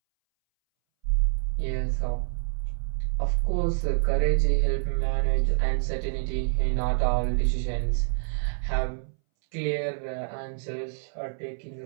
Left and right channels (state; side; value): silent; left; 60 dB below the other